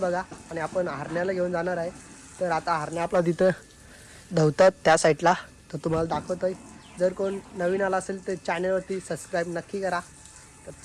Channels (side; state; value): both; identical; correlation 1.00